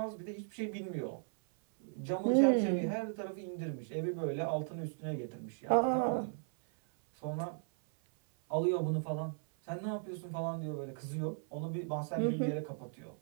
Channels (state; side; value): silent; left; 53 dB below the other